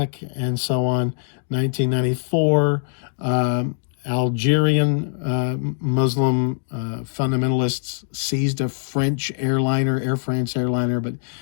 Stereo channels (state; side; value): silent; right; digital silence